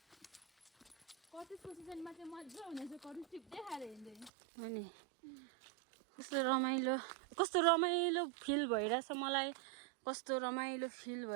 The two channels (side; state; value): left; drops out; at 4.3 s